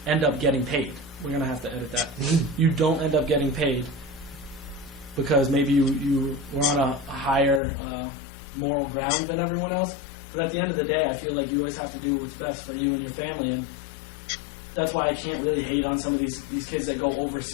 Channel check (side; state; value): right; drops out; at 7.6 s